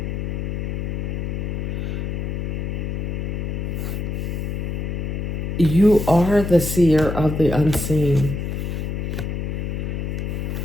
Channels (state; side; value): noise; left; hum, 2 dB below the sound